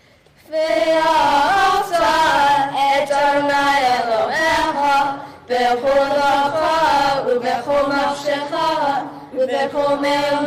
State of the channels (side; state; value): both; identical; correlation 1.00